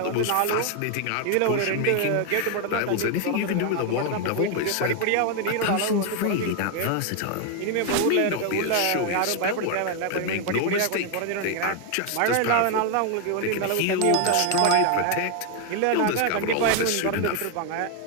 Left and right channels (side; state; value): both; different; correlation 0.01